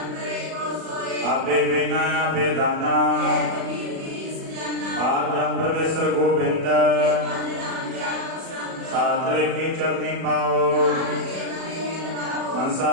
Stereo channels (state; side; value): late; left; 37 ms